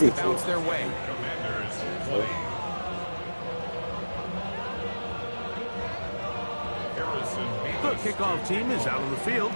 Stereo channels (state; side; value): inverted; both; correlation -1.00